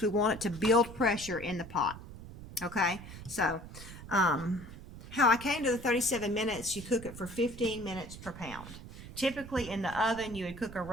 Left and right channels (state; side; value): noise; right; rumble, 14 dB below the sound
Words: we want it to build pressure in the pot. Okay? So, how I came to the 37 minutes, you cook it for 15 minutes per pound. Typically in the oven, you would cook a